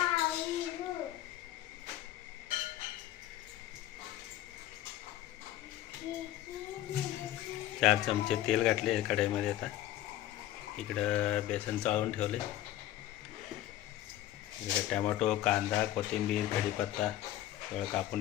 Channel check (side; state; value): right; quieter; 13.5 dB